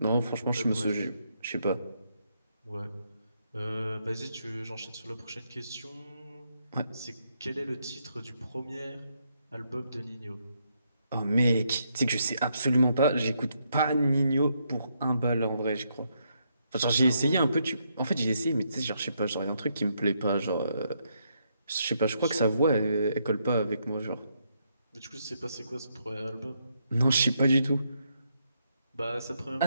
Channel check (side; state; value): both; inverted; correlation -0.77